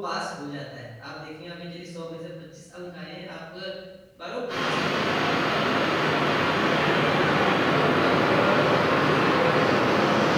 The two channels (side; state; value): both; identical; correlation 1.00